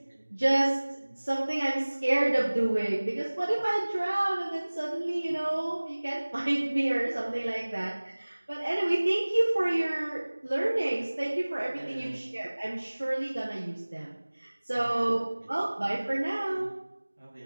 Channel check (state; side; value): inverted; both; correlation -1.00